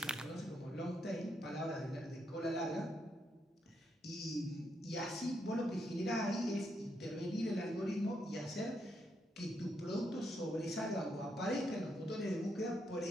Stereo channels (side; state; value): both; normal; correlation 0.79